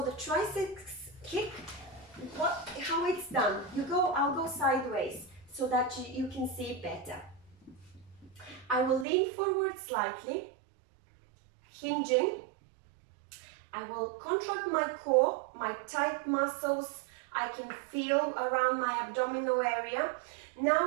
triceps kick, how it's done, I'll go sideways so that you can see better. I will lean forward slightly, hinging, I will contract my core, my tight muscles I can feel around my abdominal area.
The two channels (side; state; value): left; drops out; at 9.1 s